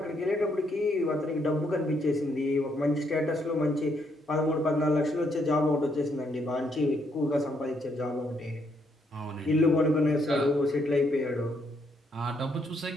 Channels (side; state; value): both; normal; correlation 0.74